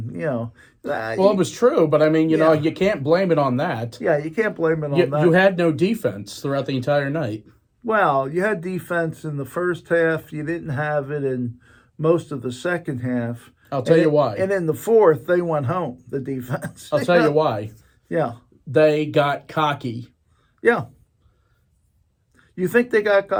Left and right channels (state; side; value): identical; both; correlation 1.00